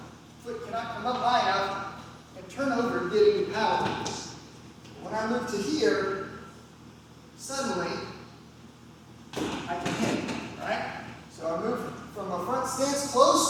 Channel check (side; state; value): both; identical; correlation 1.00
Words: Foot cannot come up high enough and turn over and get any power. When I move to here, suddenly I can hit, right? So I move from a front stance